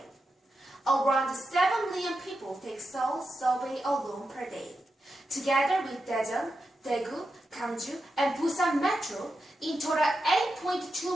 Around 7 million people take Seoul subway alone per day. Together with Daejeon, Daegu, Gangju, and Busan Metro, in total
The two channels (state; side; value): normal; both; correlation 0.88